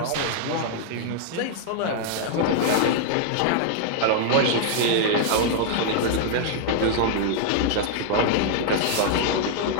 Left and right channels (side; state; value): both; different; correlation -0.01